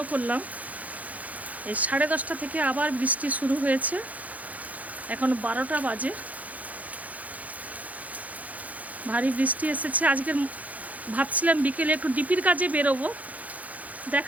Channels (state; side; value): late; left; 0.074 ms